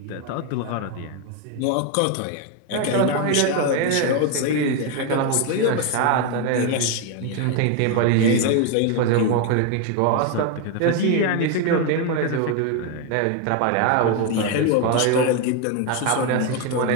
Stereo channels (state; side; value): different; both; correlation 0.01